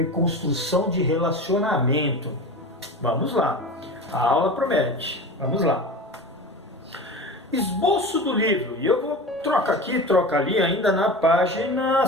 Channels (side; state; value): both; normal; correlation 0.31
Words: de relacionamento. Vamos lá. A aula promete. Vamos lá. Esboço do livro, e eu vou trocar aqui, troca ali, ainda na página